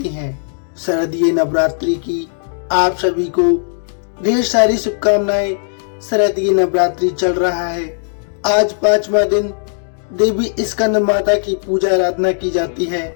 हैं। शारदीय नवरात्रि की आप सभी को ढेर सारी शुभकामनाएं। शारदीय नवरात्रि चल रहा है। आज 5वां दिन देवी स्कंद माता की पूजा आराधना की जाती है।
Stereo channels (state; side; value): silent; right; digital silence